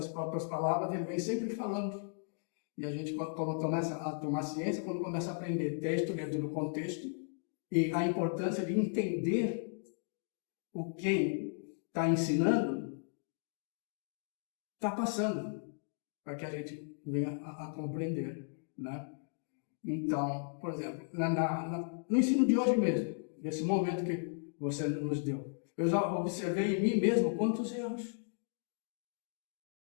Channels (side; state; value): right; silent; digital silence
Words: próprias palavras, ele vem sempre falando. E a gente, quando começa a tomar ciência, quando começa a aprender texto dentro do contexto, e a importância de entender o que está ensinando, está passando, para que a gente venha a compreender, né? Então, por exemplo, no ensino de hoje mesmo, nesse momento que você nos deu, eu já observei em mim mesmo quantos erros.